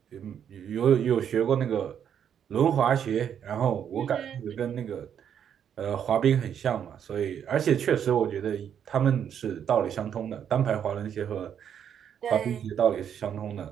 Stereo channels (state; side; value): quieter; left; 8.7 dB